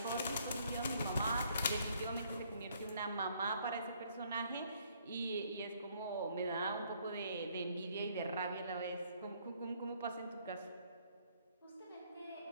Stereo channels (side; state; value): both; inverted; correlation -0.65